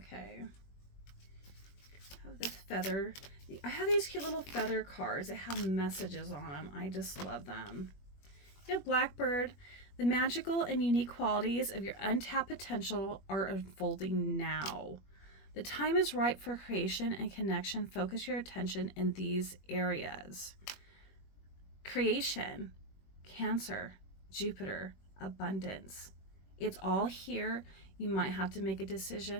I have this feather. I have these cute little feather cards that have messages on them. I just love them. You have Blackbird. The magical and unique qualities of your untapped potential are unfolding now. The time is right for creation and connection. Focus your attention in these areas. Creation, Cancer, Jupiter, abundance. It's all here. You might have to make a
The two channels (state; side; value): late; right; 21 ms